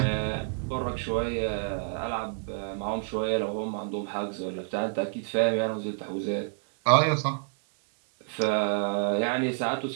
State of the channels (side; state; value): left; silent; 59 dB below the other